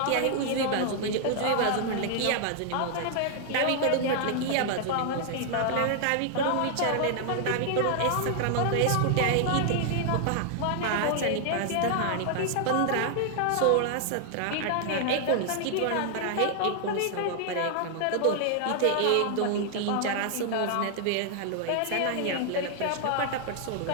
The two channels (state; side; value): different; both; correlation 0.00